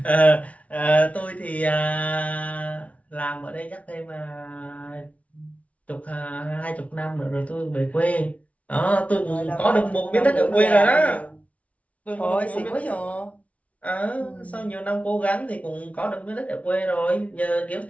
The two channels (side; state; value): right; late; 0.066 ms